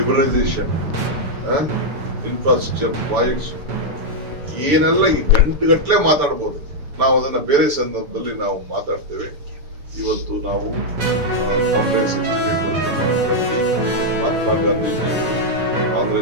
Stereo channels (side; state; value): left; late; 6.9 ms